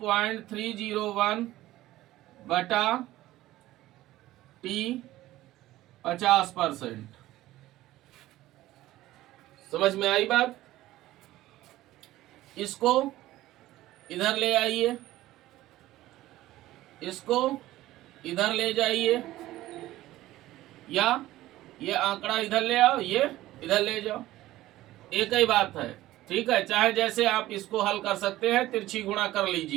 बटा टी 50%। समझ में आई बात? इसको इधर ले आइए, इसको इधर ले जाइए, या ये आंकड़ा इधर ले आओ, ये इधर ले जाओ, एक ही बात है। ठीक है, चाहे जैसे आप इसको हल कर सकते हैं, तिरछी गुणा कर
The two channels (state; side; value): quieter; left; 15.8 dB